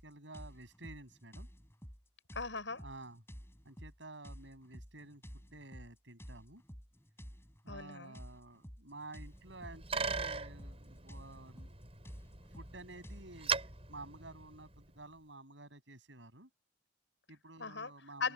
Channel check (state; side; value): normal; both; correlation -0.15